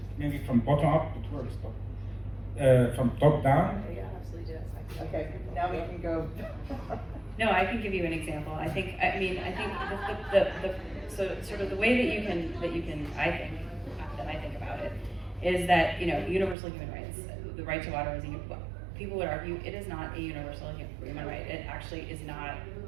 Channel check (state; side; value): drops out; left; at 16.6 s